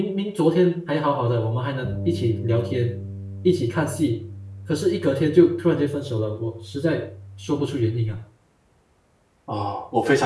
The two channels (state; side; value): identical; both; correlation 1.00